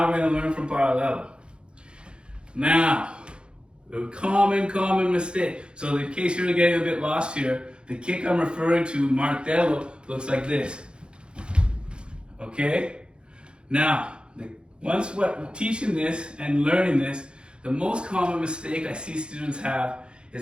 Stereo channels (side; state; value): left; late; 0.054 ms